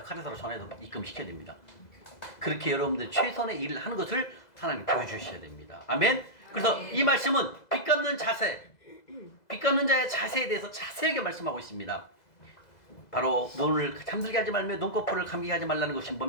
카드사로 전화해서 입금시켜야 됩니다. 그렇게 여러분들 최선의 일을 하는 것을 하나님 보여주셔야 됩니다. 아멘? 그래서 이 말씀은 빚 갚는 자세, 빚 갚는 자의 자세에 대해서 자세하게 말씀하고 있습니다. 바로 눈을 잠들게 하지 말며 눈꺼풀을 감기게 하지 말라는 것이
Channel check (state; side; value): late; right; 2.0 ms